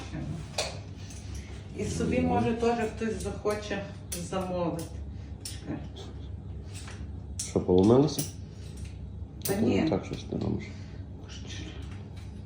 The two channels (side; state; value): both; identical; correlation 1.00